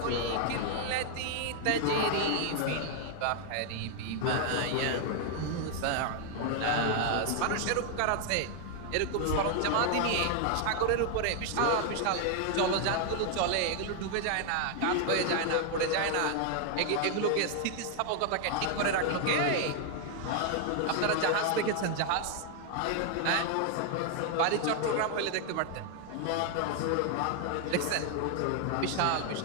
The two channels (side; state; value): both; different; correlation 0.00